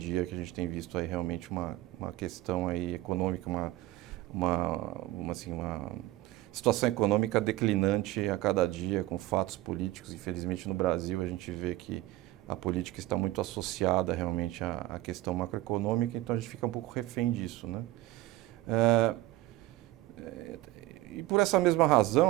que a gente tem visto aí realmente uma questão aí econômica, uma situação econômica declinante a cada dia, com fatos políticos. Infelizmente no Brasil a gente vê que a política está muito associada realmente à questão macroeconômica, então a gente fica um pouco refém disso, né? E por essa mesma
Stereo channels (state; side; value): quieter; left; 16.7 dB